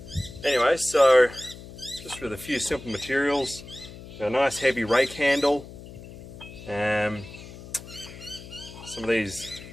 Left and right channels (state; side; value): noise; left; hum, 15 dB below the sound